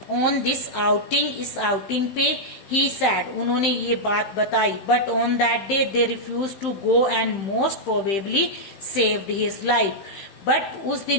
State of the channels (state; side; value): late; right; 15 ms